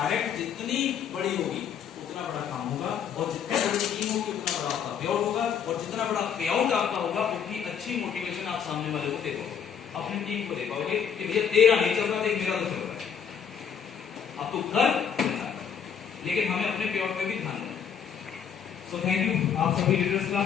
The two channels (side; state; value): right; quieter; 7.6 dB